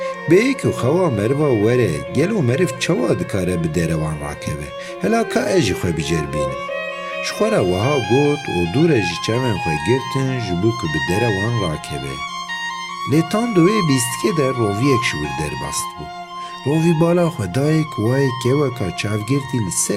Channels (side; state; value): both; identical; correlation 1.00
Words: bêyî ku xewa meriva were, gelo meriv çawa dikare bi derevan rakeve? Hela ka ez jî xwe biceribînim. Ji xwe re wiha got û dûre ji çavên xwe girtin ji bo ku bi derevan rakeve. Lê tam di wê bîstikê de roviyek ji wir derbast bû. Rovî bala xwe daye ku wayê keweka çavgirtî li